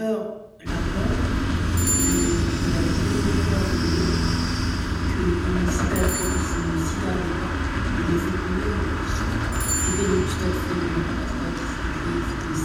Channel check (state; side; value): identical; both; correlation 1.00